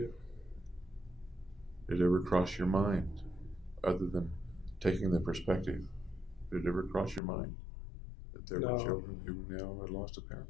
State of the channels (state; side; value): drops out; right; at 7.2 s